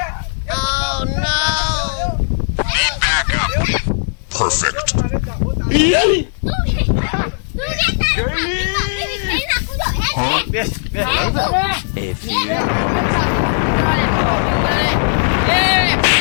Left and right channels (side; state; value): right; silent; digital silence